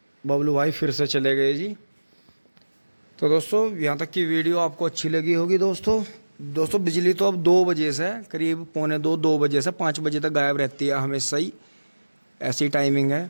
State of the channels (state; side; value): inverted; both; correlation -1.00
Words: बबलू भाई फिर से चले गए जी। तो दोस्तों यहाँ तक की वीडियो आपको अच्छी लगी होगी। दोस्तों बिजली तो अब 2 बजे से करीब 2 बजे से 5 बजे तक गायब रहती है हमेशा ही, ऐसी टाइमिंग है।